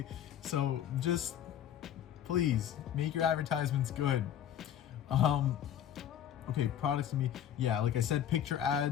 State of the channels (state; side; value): quieter; right; 10.1 dB